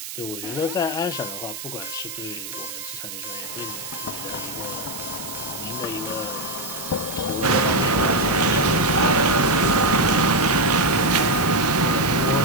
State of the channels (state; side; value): noise; right; hiss, 10 dB below the sound